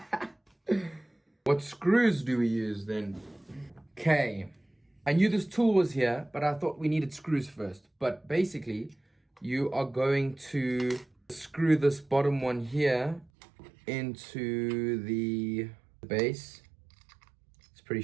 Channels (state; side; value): drops out; left; at 13.3 s